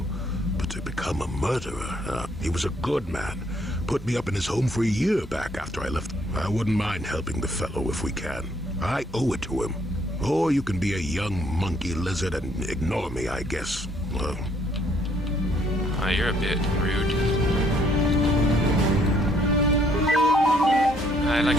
But to become a murderer, he was a good man. Put me up in his home for a year back after I left. I wouldn't mind helping the fellow if we can. I owe it to him. Or you can be a young monkey lizard and ignore me, I guess. Well... You're a bit rude. I like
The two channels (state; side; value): normal; both; correlation 0.67